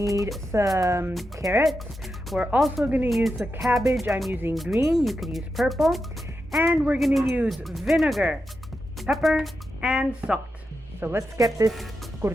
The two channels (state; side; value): normal; both; correlation 0.88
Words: some carrots. We're also going to use the cabbage. I'm using green. You could use purple. And we're going to use vinegar, pepper, and salt. So let's get this